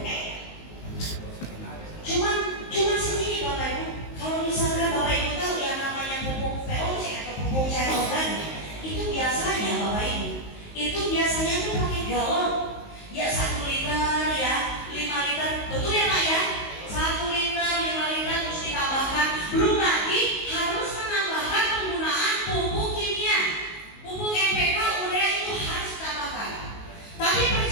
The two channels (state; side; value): late; right; 19 ms